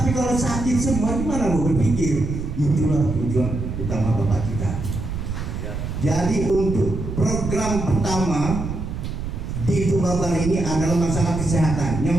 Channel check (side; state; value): right; noise; rumble, 5 dB below the sound